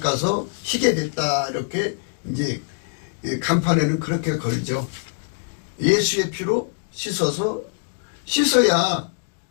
희게 됐다. 이렇게 이제 간판에는 그렇게 걸죠. 예수의 피로 씻어야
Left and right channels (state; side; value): silent; right; digital silence